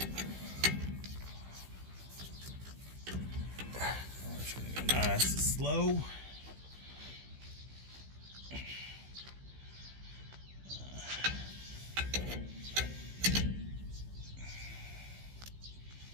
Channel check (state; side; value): late; left; 16 ms